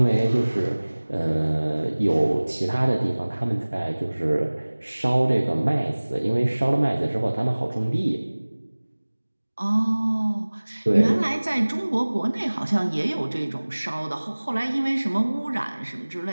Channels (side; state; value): both; inverted; correlation -1.00